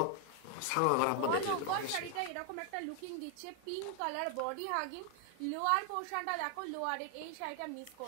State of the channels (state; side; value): different; both; correlation 0.00